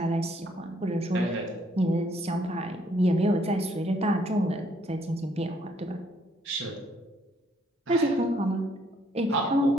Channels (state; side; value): normal; both; correlation 0.67